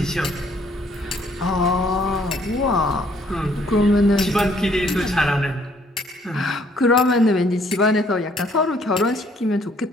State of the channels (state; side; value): normal; both; correlation 0.64